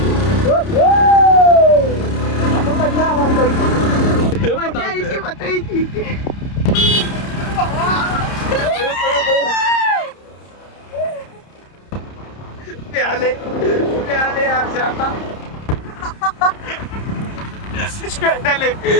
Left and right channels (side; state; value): right; late; 30 ms